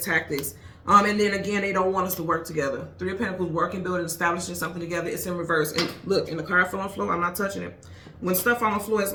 tactics. And then again, they don't want us to work together. Three of Pentacles, working, building, establishing something together. It's in reverse. And look, and the card fell on the floor. I'm not touching it. When stuff on the floor, it's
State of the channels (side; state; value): both; identical; correlation 1.00